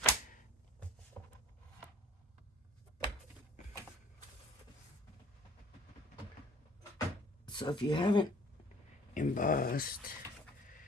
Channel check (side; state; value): both; normal; correlation 0.52